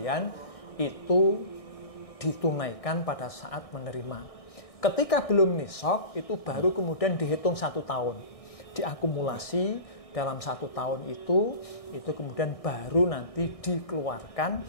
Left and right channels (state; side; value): late; right; 1.6 ms